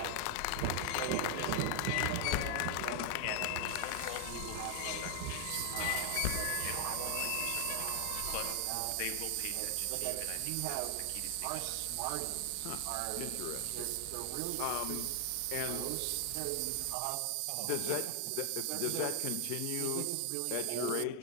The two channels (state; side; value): different; both; correlation 0.00